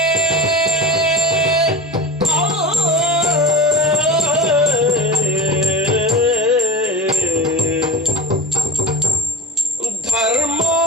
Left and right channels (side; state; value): both; normal; correlation 0.32